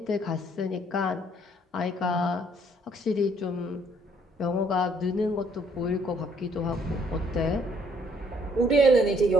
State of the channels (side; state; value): both; normal; correlation 0.65